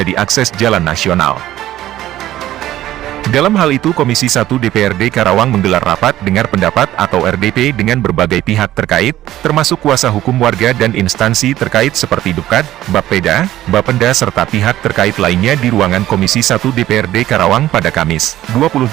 akses jalan nasional. Dalam hal itu Komisi 1 DPRD Karawang menggelar rapat dengar pendapat atau RDP dengan berbagai pihak terkait, termasuk kuasa hukum warga dan instansi terkait seperti Dukcad, Bapeda, Bapenda serta pihak terkait lainnya di ruangan Komisi 1 DPRD Karawang pada Kamis, 20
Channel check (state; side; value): quieter; left; 14.0 dB